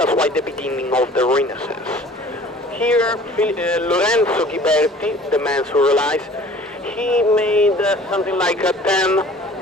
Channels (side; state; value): both; normal; correlation 0.49